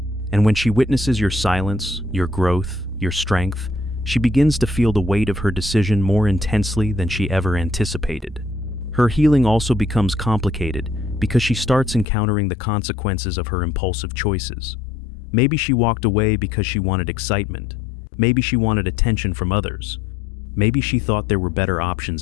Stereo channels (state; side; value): drops out; right; at 12.1 s